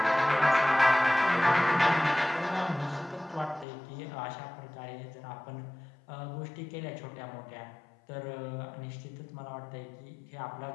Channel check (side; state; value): right; drops out; at 3.7 s